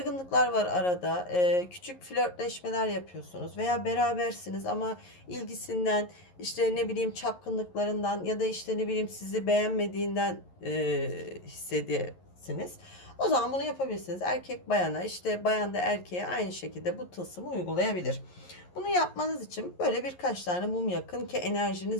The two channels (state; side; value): late; right; 11 ms